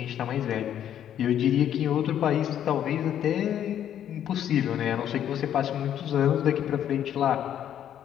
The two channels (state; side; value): quieter; right; 10.3 dB